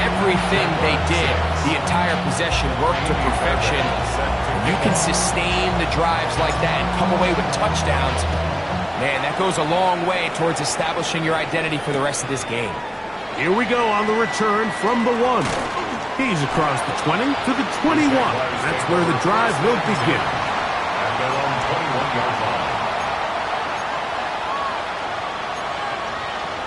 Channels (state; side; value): identical; both; correlation 1.00